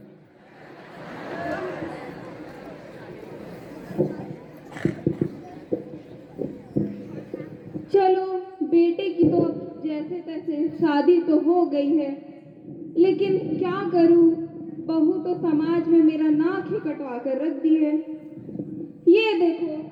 चलो, बेटे की तो अब जैसे तैसे शादी तो हो गई है, लेकिन क्या करूं, बहू तो समाज में मेरा नाक ही कटवा कर रख दी है। ये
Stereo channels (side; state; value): both; identical; correlation 1.00